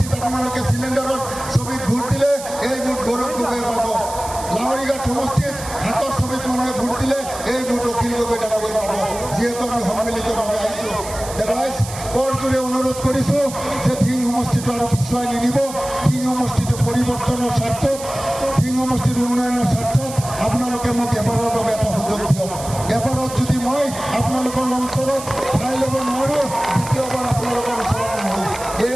আপোনালোকে চিলিণ্ডাৰৰ ছবিত ভোট দিলে এই ভোট গৌৰৱ গগৈয়ে পাব। লাহৰীঘাট সমষ্টিত হাতৰ ছবিত মানুহে ভোট দিলে এই ভোট অখিল গগৈ ডাঙৰীয়ে পাব। যিহেতু আমি সন্মিলিতভাৱে আহিছোঁ, ৰাইজ কৰজোৰে অনুৰোধ কৰিছোঁ যে ধিং সমষ্টিটো আৰু পিছুৱাই নিনিব। ধিং সমষ্টিটো পৰিৱৰ্তনৰ স্বাৰ্থত, ধিং সমষ্টিৰ উন্নয়নৰ স্বাৰ্থত আপোনালোকে মোক এবাৰৰ বাবে এটা সুযোগ দিয়ক। এবাৰত যদি মই আপোনালোকৰ অন্তৰত ঠাই ল'ব নোৱাৰোঁ, দ্বিতীয়বাৰ আপোনালোকৰ ওচৰত নহওঁ।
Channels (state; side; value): noise; right; hiss, 12 dB below the sound